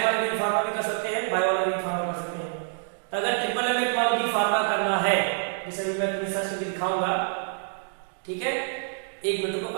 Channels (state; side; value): silent; left; 56 dB below the other